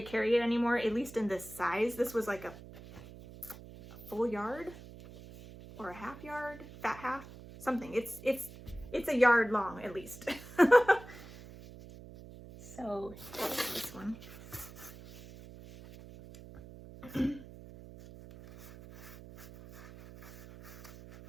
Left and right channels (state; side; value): noise; right; hum, 16 dB below the sound